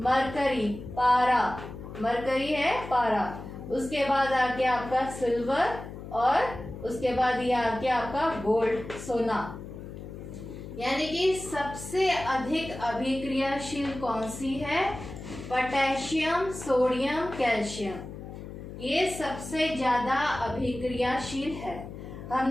पारा, मरकरी है पारा, उसके बाद आ गया आपका सिल्वर और उसके बाद ये आ गया आपका गोल्ड, सोना। यानी कि सबसे अधिक अभिक्रियाशील कौन सी है? पोटेशियम, सोडियम, कैल्शियम, ये सबसे ज्यादा अभिक्रियाशील है।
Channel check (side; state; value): left; noise; hum, 11 dB below the sound